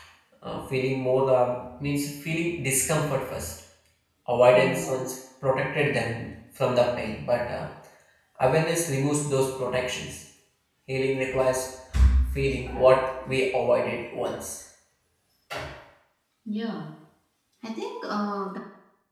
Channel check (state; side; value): identical; both; correlation 1.00